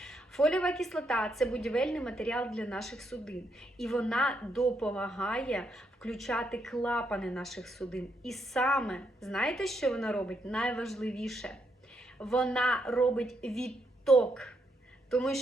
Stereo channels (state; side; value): normal; both; correlation 0.78